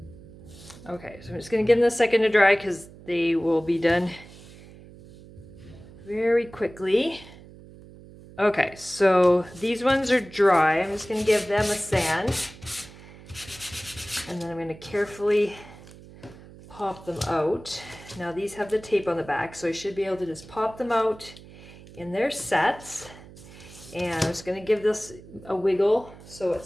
Okay, so I'm just going to give them a second to dry because they will be done very quickly. Okay, so these ones are dry. I'm just going to give them a sand. And then I'm going to carefully pop them out. Now these have the tape on the back, so I should be able to just pop them out in their sets. And I'm just going to give this a wiggle so it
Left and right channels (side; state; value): right; noise; hum, 19 dB below the sound